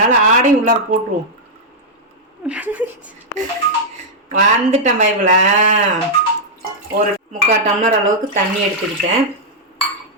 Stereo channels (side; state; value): both; normal; correlation -0.05